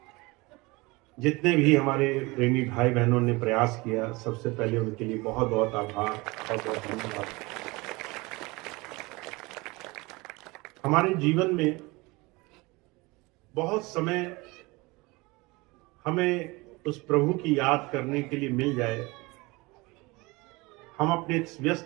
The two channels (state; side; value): quieter; left; 23.9 dB